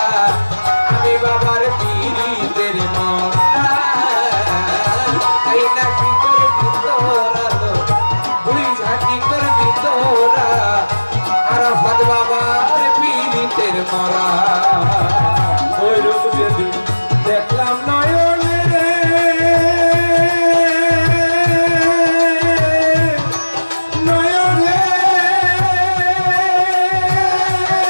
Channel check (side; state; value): both; inverted; correlation -1.00